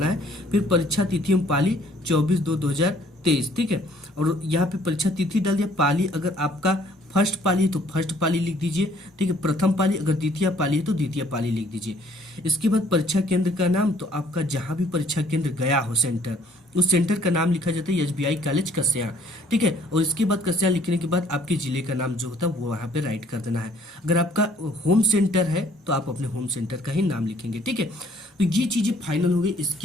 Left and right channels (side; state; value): both; normal; correlation 0.60